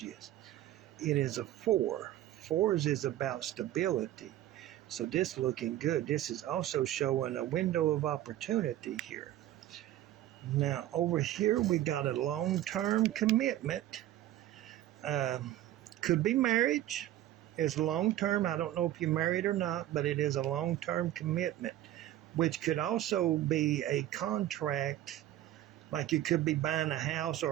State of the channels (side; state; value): left; quieter; 13.4 dB